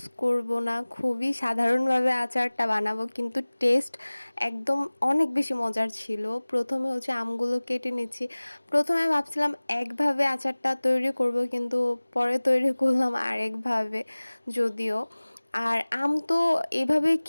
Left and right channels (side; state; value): both; inverted; correlation -1.00